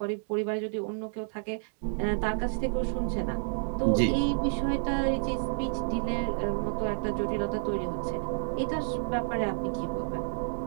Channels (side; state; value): left; silent; digital silence